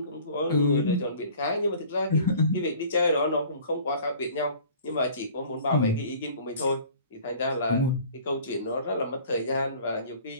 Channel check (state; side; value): inverted; both; correlation -0.48